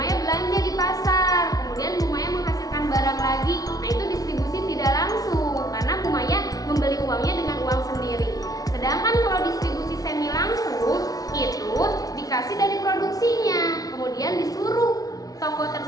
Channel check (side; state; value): right; late; 0.18 ms